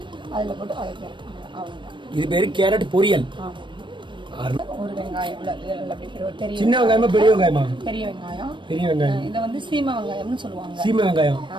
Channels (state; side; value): late; left; 0.23 ms